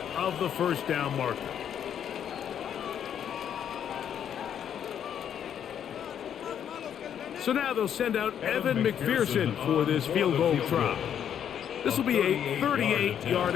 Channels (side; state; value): right; quieter; 9.1 dB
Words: of the first down marker. So now they'll send out Evan McPherson for this field goal try. This will be a 38-yard